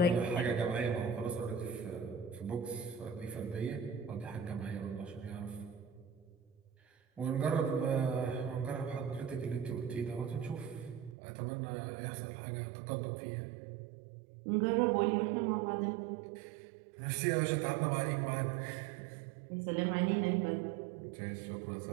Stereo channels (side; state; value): left; drops out; at 11.2 s